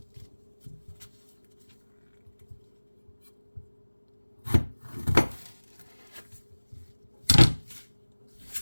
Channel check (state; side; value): inverted; both; correlation -1.00